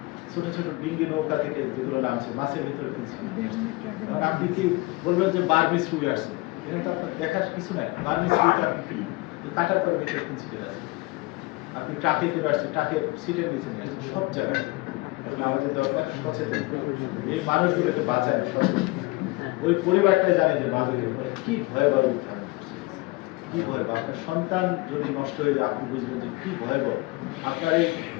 ছোট ছোট ডিঙ্গি নৌকা থেকে যেগুলো নামছে মাছের ভিতরে কিনছি। কারণ আপনি কি বলবেন যে বার্মিস রুই আসছে, এখানে তো আপনার দেখার কিছু নাই। বার্মিস রুইটা আপনি কি কাটার পরে ভিতরে কিনছি আছে, আপনি ট্রাকে করে আসছে, ট্রাকের সিটের নিচে নিয়ে আসছে, সব জায়গায়। এখন আমাদের দরকার সচেতন, এই মানুষগুলোকে বাঁচায় সচেতন। ওই পরিবারটাই জানে যে মাদকের ফলে কি ভয়াবহ উত্থান করছে, কি ভয়াবহ। আপনার সন্তান যদি নষ্ট হয়ে যায় আপনি বুঝবেন যে কি ভয়াবহ। আপনার এই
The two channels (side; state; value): right; quieter; 22.8 dB